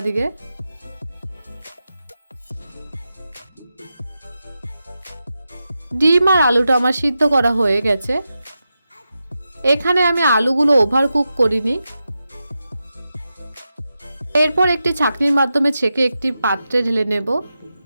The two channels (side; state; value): both; inverted; correlation -0.90